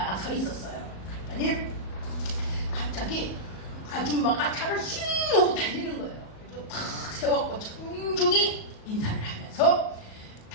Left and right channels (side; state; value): right; late; 37 ms